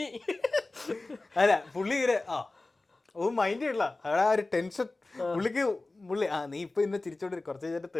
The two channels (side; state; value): right; quieter; 3.1 dB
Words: അല്ല പുള്ളി ഇങ്ങനെ മൈൻഡ് ചെയ്യണ്ട. അവിടെ ആ ഒരു ടെൻഷൻ പുള്ളിക്ക്. പുള്ളി നീ ഇപ്പൊ ഇന്ന് ചിരിച്ചോണ്ടിരിക്കും, കുറച്ച് കഴിഞ്ഞിട്ട്